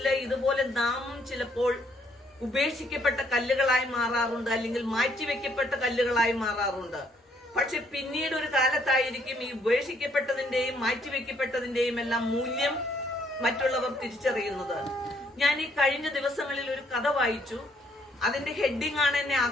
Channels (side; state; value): both; normal; correlation 0.68